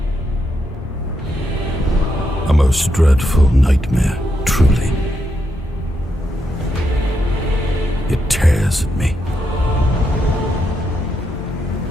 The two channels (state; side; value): normal; both; correlation 0.81